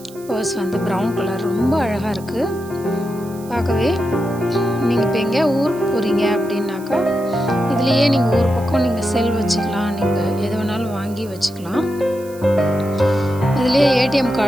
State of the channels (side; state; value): right; noise; hiss, 21 dB below the sound